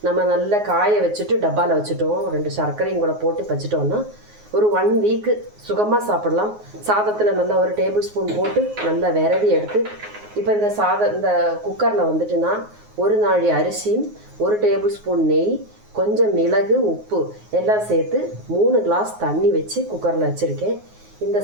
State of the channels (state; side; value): late; left; 9.5 ms